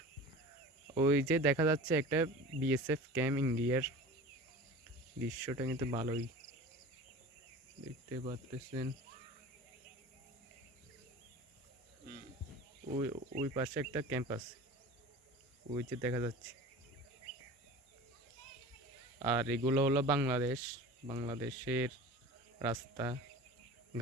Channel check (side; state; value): both; normal; correlation 0.37